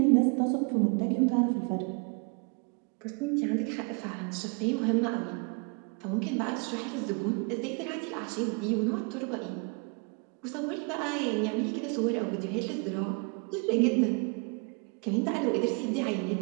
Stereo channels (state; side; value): quieter; left; 34.1 dB